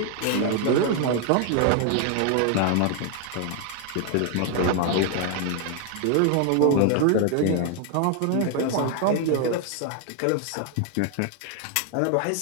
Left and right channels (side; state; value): both; different; correlation 0.00